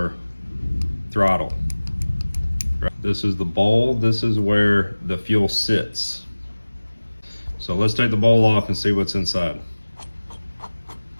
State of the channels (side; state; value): both; inverted; correlation -1.00